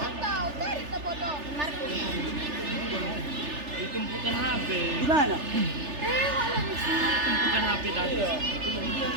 Tumpukan HP. Di mana? Tumpukan HP tadi.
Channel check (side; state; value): left; late; 3.4 ms